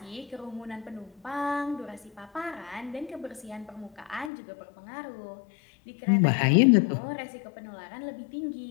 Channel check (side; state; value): right; drops out; at 4.3 s